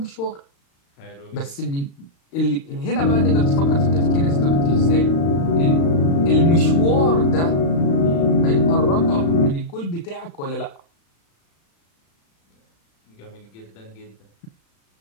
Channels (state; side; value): late; right; 36 ms